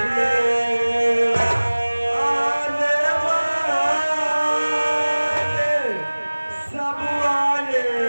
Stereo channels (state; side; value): inverted; both; correlation -1.00